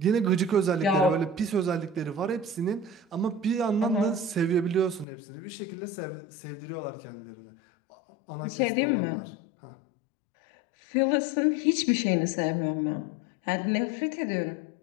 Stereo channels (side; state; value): right; drops out; at 5.1 s